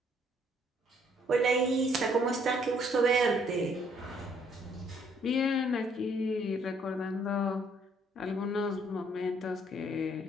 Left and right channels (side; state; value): both; normal; correlation 0.65